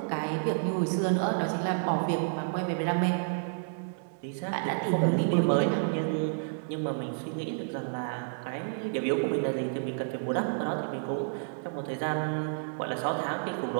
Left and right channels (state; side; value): silent; left; digital silence